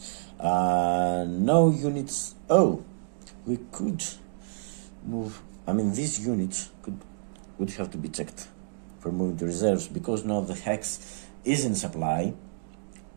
no units. Oh, we could move. I mean, these units would have to be checked for moving to reserves, because now the hex is in supply.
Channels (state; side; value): silent; left; digital silence